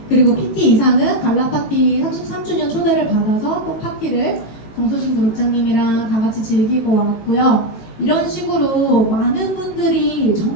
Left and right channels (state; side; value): late; right; 18 ms